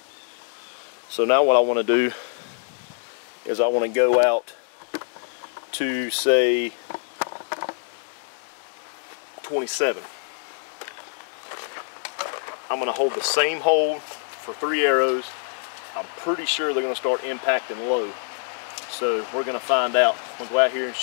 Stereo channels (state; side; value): silent; right; digital silence